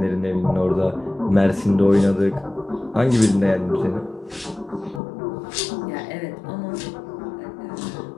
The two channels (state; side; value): drops out; right; at 5.0 s